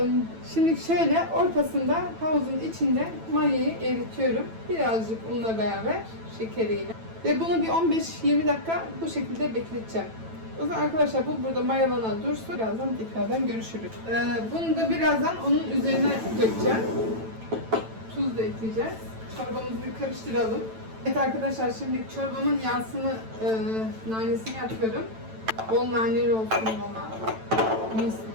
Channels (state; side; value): late; left; 9.0 ms